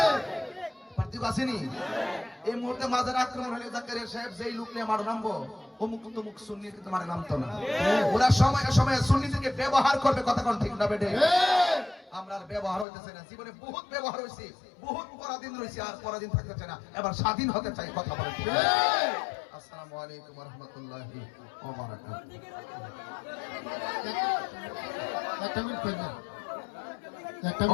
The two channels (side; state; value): right; drops out; at 12.9 s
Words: পার্থক্য আসেনি? এই মুহূর্তে মাজার আক্রমণ হলে জাকারিয়া সাহেব যেই লোক নিয়ে মার নামবো, অমুক তমুক সুন্নি কিন্তু মারে নামতো না। ওরা সময়ে সময়ে সুন্নিদেরকে ব্যবহার করবে, কথা কোন ঠিক না বেটে? আমরা আর ব্যবহার হইতেছে না, জীবনে বহুত ব্যবহার হয়েছে, বহুত পরাধীন রয়েছে, আর পরাধীন থাকতে চাই না, এবার স্বাধীন হতে চাই, কথা বলে। আসসালামু আলাইকুম ওয়া রাহমাতুল্লাহি ওয়া বারাকাতুহু।